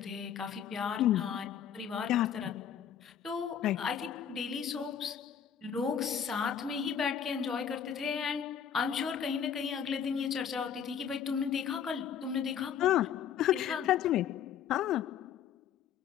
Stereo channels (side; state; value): right; quieter; 8.4 dB